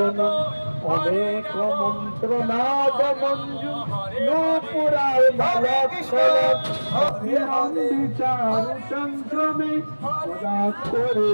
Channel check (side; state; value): both; inverted; correlation -1.00